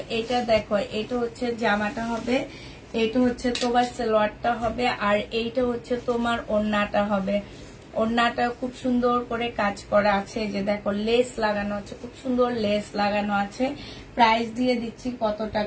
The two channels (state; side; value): identical; both; correlation 1.00